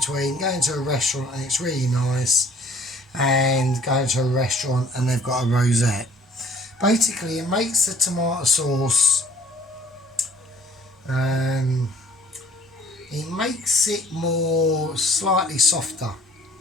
going to a restaurant and it's really nice and going to a restaurant and they've got a rosette. Basically, it makes the tomato sauce, it makes it more slightly softer.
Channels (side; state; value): both; normal; correlation 0.56